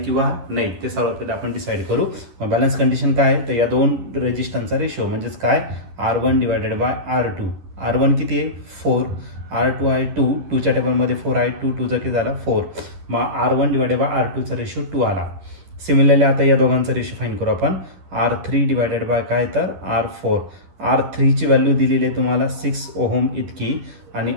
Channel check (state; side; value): late; left; 11 ms